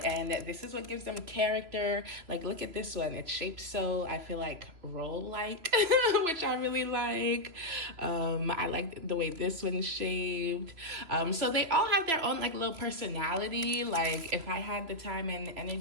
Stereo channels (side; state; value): left; late; 3.0 ms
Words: and this is what gives them character. Like, look at this one. It's shaped so, I feel like, roll-like, which I really like. I like the way this one's shaped. So they all have their own, like, little personality. Like, if I had the time and